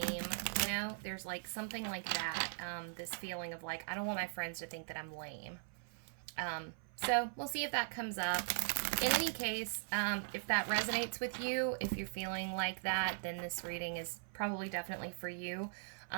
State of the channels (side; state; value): left; silent; 51 dB below the other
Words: there's like something like that, this feeling of like, I don't want my friends to think that I'm lame. So we'll see if that comes up. In any case, if that resonates with you, if you're feeling like that, then this reading is probably definitely for you.